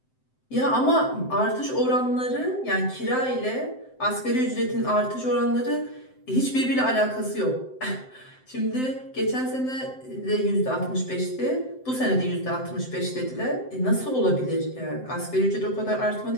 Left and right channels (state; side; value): late; right; 7.8 ms